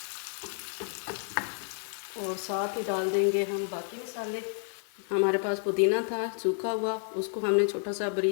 और साथ ही डाल देंगे हम बाकी मसाले। हमारे पास पुदीना था सूखा हुआ, उसको हमने छोटा सा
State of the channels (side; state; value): right; silent; 57 dB below the other